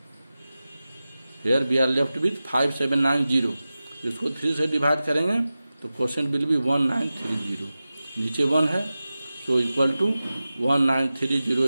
Here we are left with 5 7 9 0। इसको 3 से डिवाइड करेंगे तो क्वोशेंट विल बी 1930। नीचे 1 है, so equal to 1930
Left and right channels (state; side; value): inverted; both; correlation -0.95